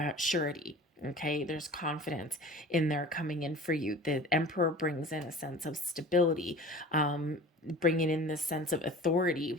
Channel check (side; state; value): both; normal; correlation 0.40